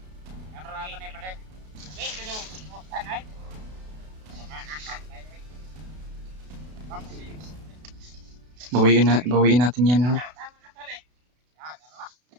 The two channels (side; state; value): left; late; 32 ms